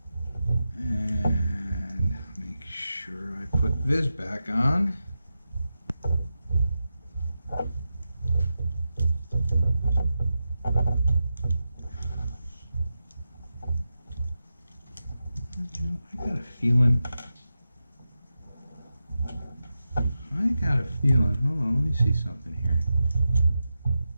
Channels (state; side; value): inverted; both; correlation -0.91